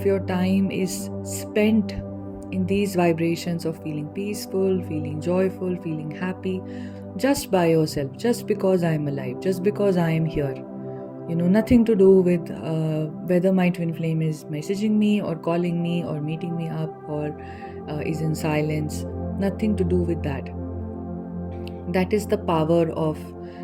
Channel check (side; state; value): both; identical; correlation 1.00